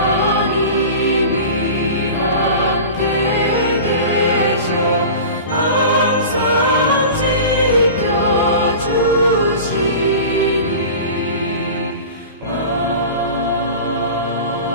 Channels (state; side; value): inverted; both; correlation -0.35